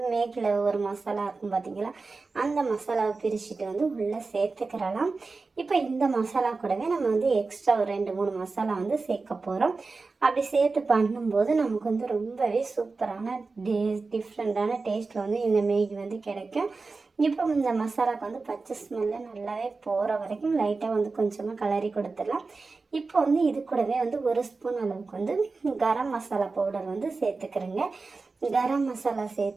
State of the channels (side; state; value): left; quieter; 4.0 dB